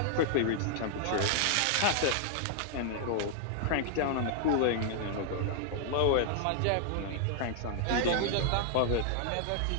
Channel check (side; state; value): both; different; correlation -0.01